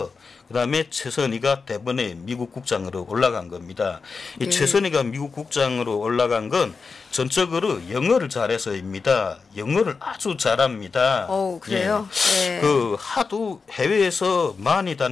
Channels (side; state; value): right; quieter; 4.8 dB